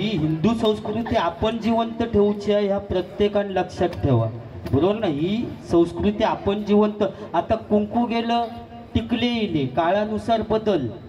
हिंदू संस्कृती आपण जिवंत ठेवूची आहे, ह्या प्रत्येकाने लक्षात ठेवा, बरोबर ना. ही संस्कृती आपण जिवंत. आता कुंकू गेलं टिकले येले, काळानुसार बदल.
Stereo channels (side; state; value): both; identical; correlation 1.00